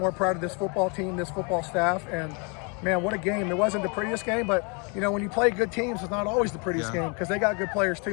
proud of this football team, this football staff, and man, what a game. It wasn't the prettiest game, but when you play good teams, it's not always the prettiest game because they got good players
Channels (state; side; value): quieter; right; 33.8 dB